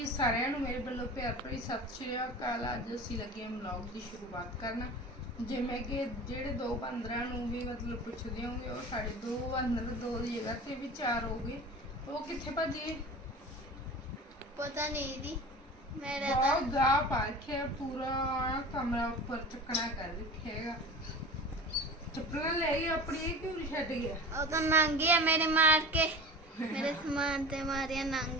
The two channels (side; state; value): both; normal; correlation 0.35